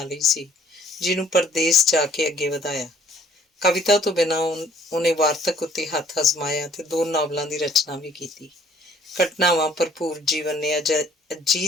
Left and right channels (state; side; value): normal; both; correlation 0.59